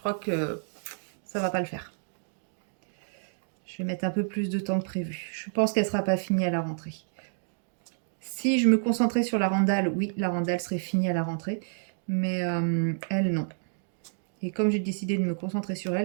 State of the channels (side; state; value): left; silent; digital silence